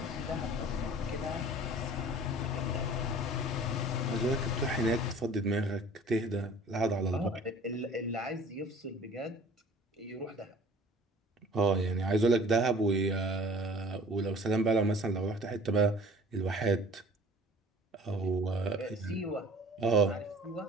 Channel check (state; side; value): normal; both; correlation 0.47